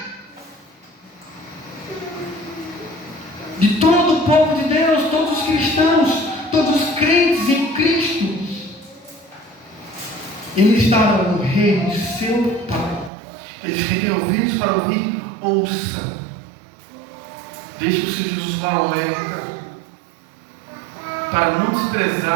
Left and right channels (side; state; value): left; drops out; at 13.1 s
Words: de todo o povo de Deus, todos os cristãos, todos os crentes em Cristo. Eles estarão no reino de seu Pai. Eles que têm ouvidos para ouvir, ouça. Deixe o Senhor Jesus o alerta para não